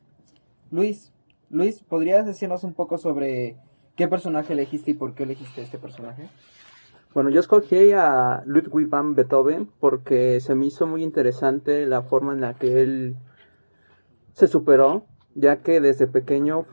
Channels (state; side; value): inverted; both; correlation -1.00